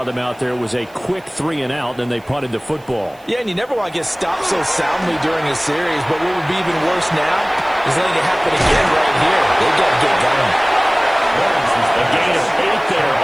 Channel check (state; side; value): noise; right; hiss, 29 dB below the sound